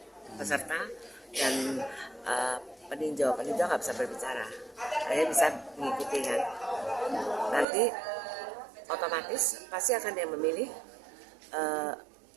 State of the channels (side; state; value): left; drops out; at 7.7 s